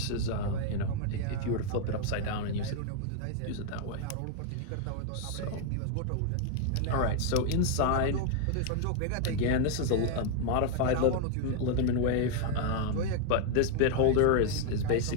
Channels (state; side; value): different; both; correlation 0.00